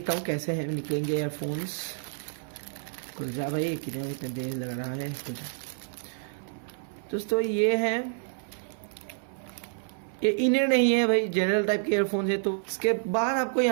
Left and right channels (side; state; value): left; silent; 59 dB below the other